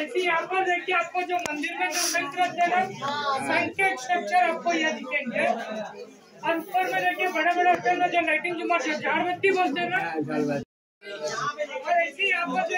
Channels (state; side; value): identical; both; correlation 1.00